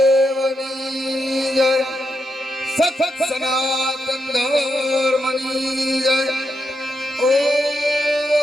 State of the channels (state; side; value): normal; both; correlation 0.84